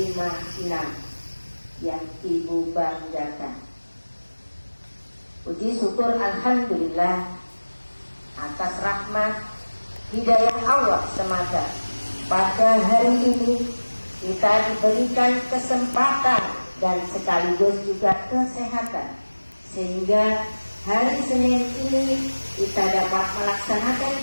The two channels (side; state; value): both; inverted; correlation -1.00